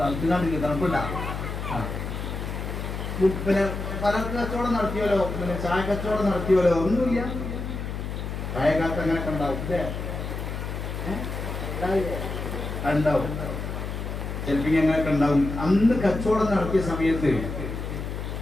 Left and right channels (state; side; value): noise; left; hum, 5 dB below the sound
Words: തണുപ്പില്ല. പിന്നെ പല കച്ചവടം നടത്തിയല്ലോ, പിന്നെ ചായ കച്ചവടം നടത്തിയല്ലോ, ഒന്നുമില്ല. ചായക്കാലത്ത് അങ്ങനെയൊക്കെ ഉണ്ടാവും അല്ലേ? ഉണ്ടാവും, ചിലപ്പോൾ അങ്ങനെയൊക്കെ ഉണ്ടാവും. അന്ന് കച്ചവടം നടത്തിയ സമയത്ത്